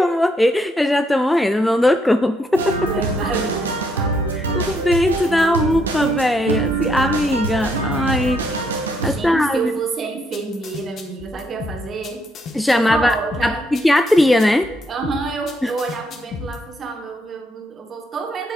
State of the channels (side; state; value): both; normal; correlation 0.74